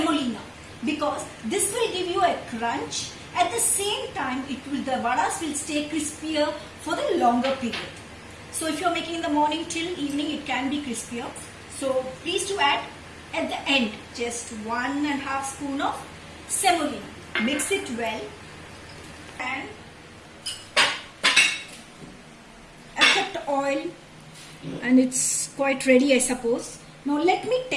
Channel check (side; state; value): both; identical; correlation 1.00